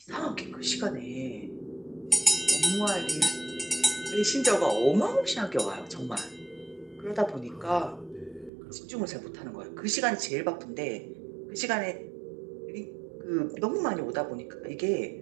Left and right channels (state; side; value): drops out; left; at 8.5 s